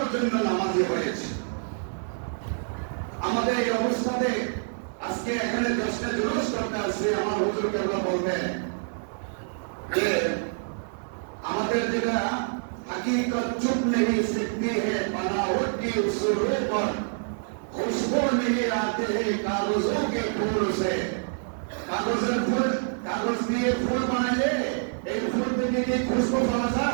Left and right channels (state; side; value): silent; left; 60 dB below the other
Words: জন্য নামাজি হয়েছে। আমাদের এই অবস্থাতে আজকে এখানে 10টা জুলুস করতে আসছে, আমার হুজুর কেবলা বলবেন যে আমাদের যেটা हकीकत चुप नहीं सकती है, बनावट की उसूलों पर खुशबू नहीं आते हैं कागजों के फूल से। कागजेर फूल, कागज দিয়ে ফুল বানাইলে এই ফুল থেকে কি খুশবু